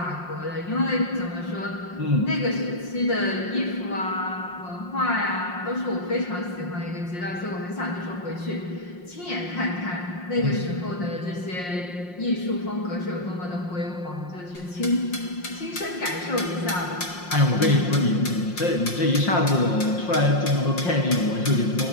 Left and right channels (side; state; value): right; late; 5.6 ms